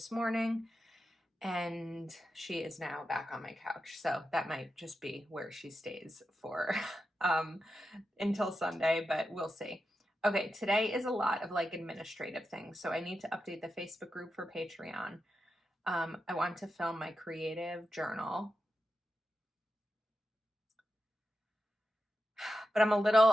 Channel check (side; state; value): both; normal; correlation 0.89